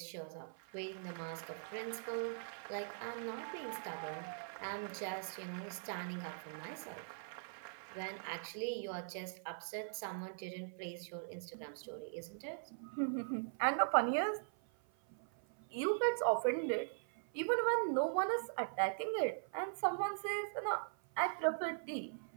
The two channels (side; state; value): left; silent; 50 dB below the other